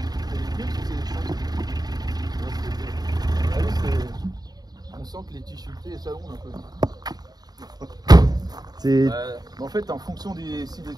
On sent que les tissus et ça gonfle un peu. C'est. En fait, en fonction si les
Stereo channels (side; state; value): left; late; 0.19 ms